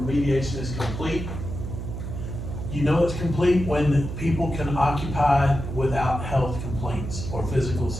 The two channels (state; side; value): noise; right; hum, 6 dB below the sound